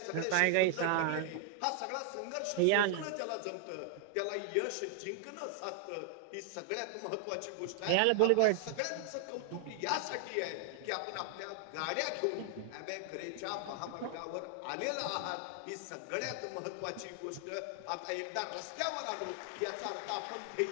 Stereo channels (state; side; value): different; both; correlation 0.00